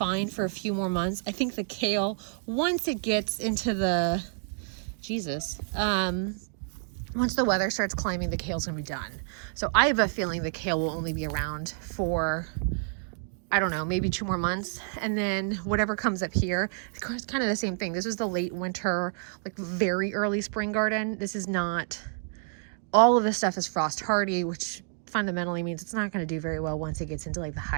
for a few more months. I think the kale, once it gets into the, once the weather starts climbing, the kale's gonna be done. So I have a feeling the kale will only be around for, I don't know, maybe 2 more months. And then whatever comes up here, it's kind of the same thing. This is the late winter, like very early spring garden. This is not, all of this stuff is frost hardy, which fundamentally means it's not going to do very well once it gets into like the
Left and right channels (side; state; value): left; silent; 59 dB below the other